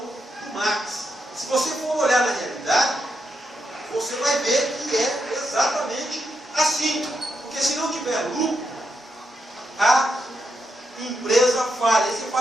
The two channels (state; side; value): normal; both; correlation 0.83